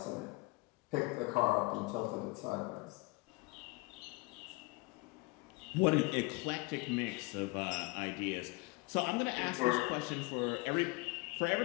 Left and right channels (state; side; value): quieter; right; 25.4 dB